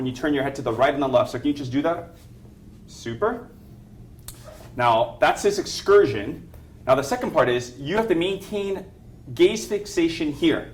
you turn your head to the right and the left. So can you just do that? Super. Now, that's his excursion. Now, the second part is you have to maintain gaze fixation here.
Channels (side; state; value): both; identical; correlation 1.00